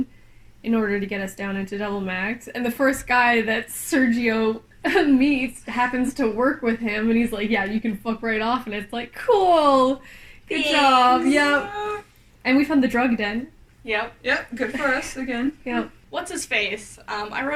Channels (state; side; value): identical; both; correlation 1.00